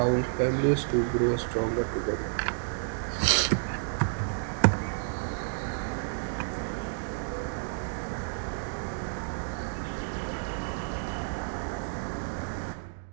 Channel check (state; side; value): silent; left; digital silence